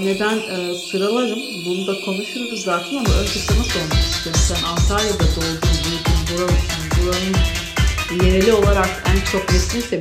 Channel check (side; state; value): both; identical; correlation 1.00